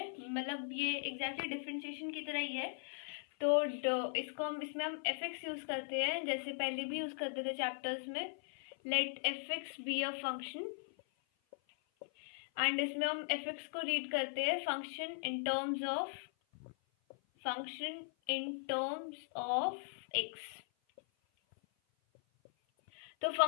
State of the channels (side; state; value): right; silent; 52 dB below the other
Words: मतलब ये एग्जैक्टली डिफरेंशिएशन की तरह ही है। तो इसमें हम एफ एक्स यूज करते हैं, जैसे पहले भी यूज करते थे चैप्टर्स में। Let f x be a function, and इसमें हम एफ एक्स को रीड करते हैं function in terms of x. तो